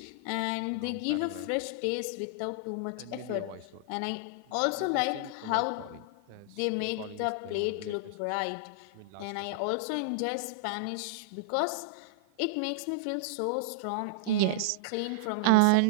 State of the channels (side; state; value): both; different; correlation -0.01